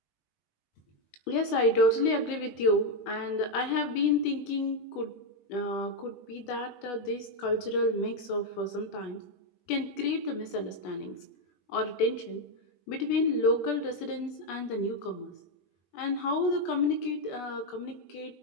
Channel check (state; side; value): late; right; 20 ms